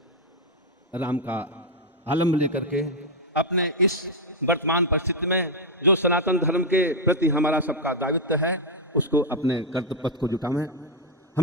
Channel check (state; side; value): normal; both; correlation 0.00